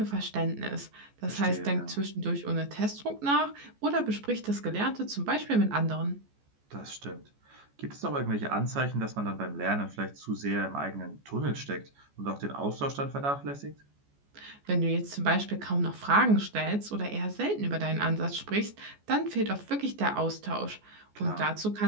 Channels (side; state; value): left; late; 14 ms